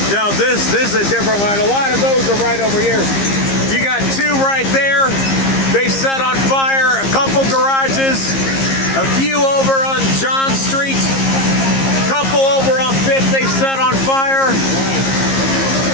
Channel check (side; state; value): right; late; 15 ms